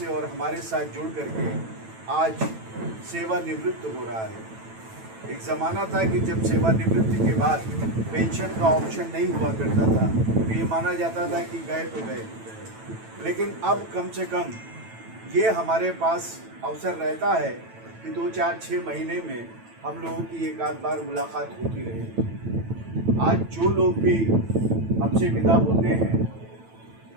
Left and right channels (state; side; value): late; left; 9.1 ms